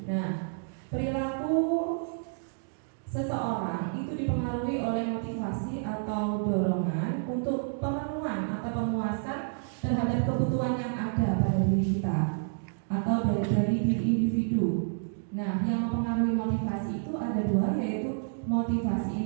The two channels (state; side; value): silent; left; digital silence